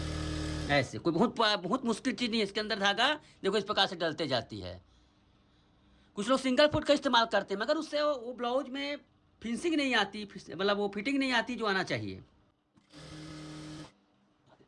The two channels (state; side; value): identical; both; correlation 1.00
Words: ऐसे कोई बहुत बहुत मुश्किल चीज़ नहीं है। इसके अंदर धागा देखो इस प्रकार से डलते जाती है। कुछ लोग सिंगल फुट का इस्तेमाल करते हैं, मगर उससे वो ब्लाउज में फिनिशिंग नहीं आती, मतलब वो फिटिंग नहीं आती जो आना चाहिए।